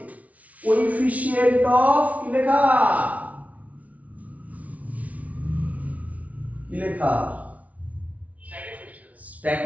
কোএফিসিয়েন্ট অফ, কি লেখা? কি লেখা?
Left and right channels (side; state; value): left; late; 0.069 ms